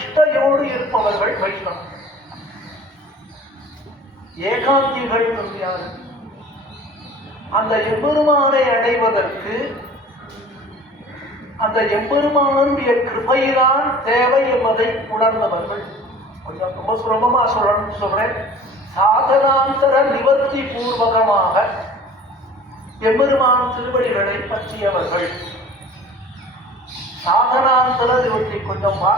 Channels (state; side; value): normal; both; correlation 0.45